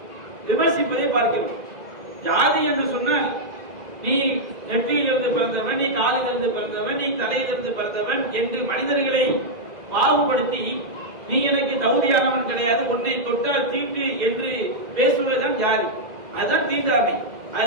விமர்சிப்பதை பார்க்கிறோம். ஜாதி என்று சொன்னால் நீ நெற்றியிலிருந்து பிறந்தவன், நீ காலிலிருந்து பிறந்தவன், நீ தலையிலிருந்து பிறந்தவன் என்று மனிதர்களை பாகுபடுத்தி நீ எனக்கு தகுதியானவன் கிடையாது, உன்னை தொட்டால் தீட்டு என்று பேசுவதுதான் ஜாதி. அதுதான் தீண்டாமை.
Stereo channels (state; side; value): late; left; 2.0 ms